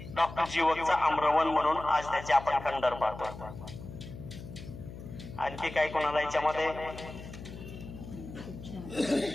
डॉक्टर जीवकचं आम्रवन म्हणून आज त्याचे आपण खंडर पाहतो. आणखी काय कोणाला याच्यामध्ये,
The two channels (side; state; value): left; noise; hum, 12 dB below the sound